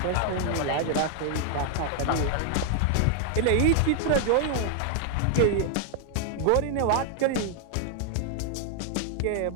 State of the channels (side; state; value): both; different; correlation 0.00